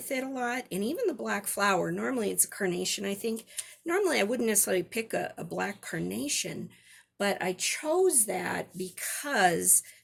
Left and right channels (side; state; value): both; identical; correlation 1.00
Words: it a lot, and even the black flower. Normally it's a carnation, I think. Normally I wouldn't necessarily pick a black carnation, but I chose that because